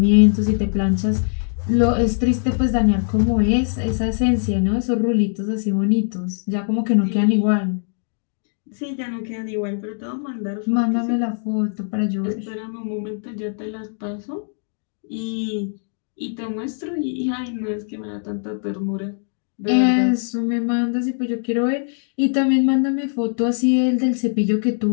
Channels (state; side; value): silent; right; digital silence